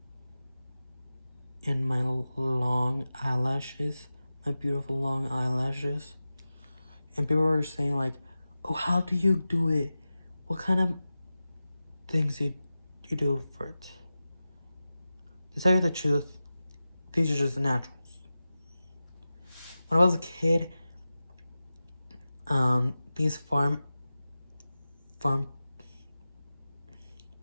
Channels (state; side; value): inverted; both; correlation -0.94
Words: and my long eyelashes, my beautiful long eyelashes. And people were saying like, oh, how do you do it? What kind of things you do for it? To tell you the truth, these are just naturals. When I was a kid, these farm